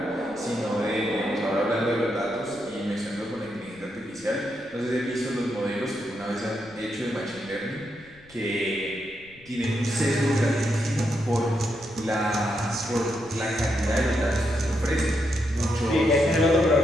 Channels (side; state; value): left; noise; rumble, 26 dB below the sound